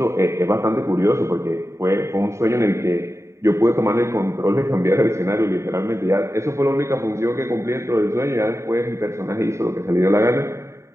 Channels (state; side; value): late; left; 0.14 ms